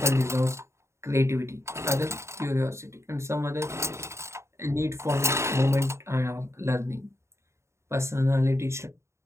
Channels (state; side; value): late; left; 0.13 ms